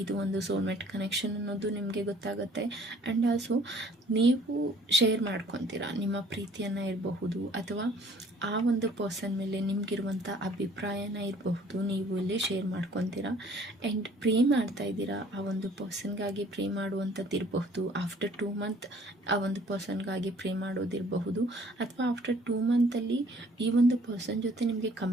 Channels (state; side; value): normal; both; correlation 0.56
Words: ಇದು ಒಂದು ಸೋಲ್ಮೇಟ್ ಕನೆಕ್ಷನ್ ಅನ್ನೋದು ನಿಮಗೆ ಗೊತ್ತಾಗುತ್ತೆ. ಆ್ಯಂಡ್ ಆಲ್ಸೋ ನೀವು ಶೇರ್ ಮಾಡ್ಕೊತೀರಾ ನಿಮ್ಮ ಪ್ರೀತಿಯನ್ನು ಇರಬಹುದು, ಅಥವಾ ಆ ಒಂದು ಪರ್ಸನ್ ಮೇಲೆ ನಿಮಗಿರುವಂಥ ಅಭಿಪ್ರಾಯನ ಇರಬಹುದು, ನೀವು ಇಲ್ಲಿ ಶೇರ್ ಮಾಡ್ಕೊತೀರಾ. ಆ್ಯಂಡ್ ಪ್ರೇ ಮಾಡ್ತಾ ಇದ್ದೀರಾ, ಆ ಒಂದು ಪರ್ಸನ್ಗಾಗಿ ಪ್ರೇ ಮಾಡುವಂಥದ್ದು ಇರಬಹುದು. ಆಫ್ಟರ್ 2 ಮಂತ್ ಆ ಒಂದು ಪರ್ಸನ್ಗಾಗಿ ಪ್ರೇ ಮಾಡೋದಿರಬಹುದು, ಅಥವಾ ಆಫ್ಟರ್ 2 ಮಂತಲ್ಲಿ ಈ ಒಂದು ಪರ್ಸನ್ ಜೊತೆ ನಿಮಗೆ